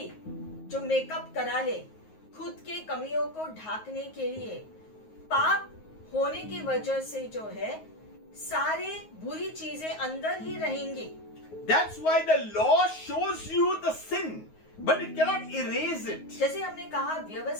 जो makeup करा ले खुद के कमियों को ढाकने के लिए, पाप होने की वजह से जो है सारे बुरी चीजें अंदर ही रहेंगी। That's why the law shows you the sin, but it cannot erase it. जैसे हमने कहा,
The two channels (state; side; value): late; right; 9.4 ms